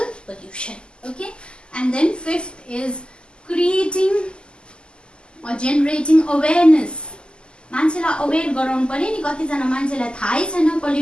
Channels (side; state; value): right; late; 0.049 ms